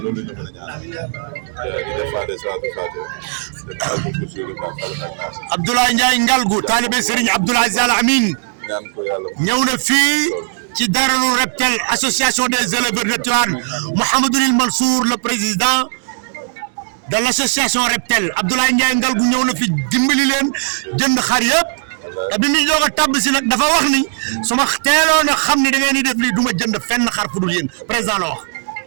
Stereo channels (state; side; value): silent; left; digital silence